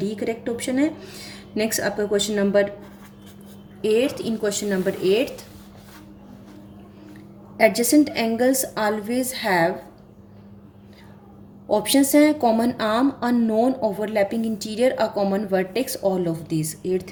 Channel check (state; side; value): identical; both; correlation 1.00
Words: करेक्ट ऑप्शन है. Next आपका question number 8th. In question number 8th, adjacent angles always have. Options हैं common arm, a non overlapping interior, a common vertex, all of this.